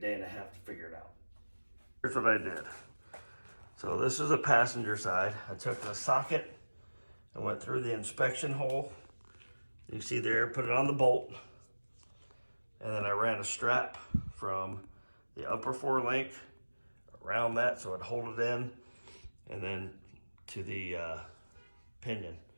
and a half to figure it out. Here's what I did. So this is a passenger side. I took the socket and went through the inspection hole. You see there, put it on the bolt. And then I ran a strap from the upper forelink around that so it'd hold it in, and then to the pinion.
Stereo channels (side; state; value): both; inverted; correlation -1.00